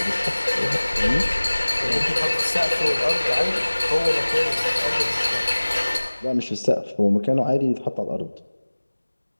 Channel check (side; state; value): both; inverted; correlation -1.00